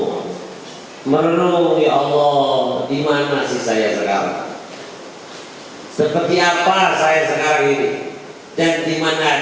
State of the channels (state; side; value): identical; both; correlation 1.00